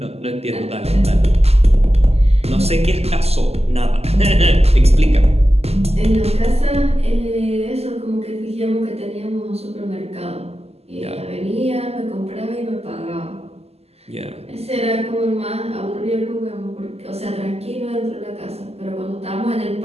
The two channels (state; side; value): late; left; 0.29 ms